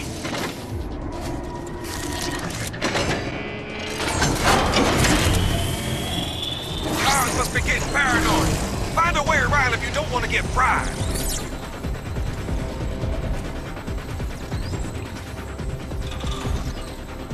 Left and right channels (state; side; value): identical; both; correlation 1.00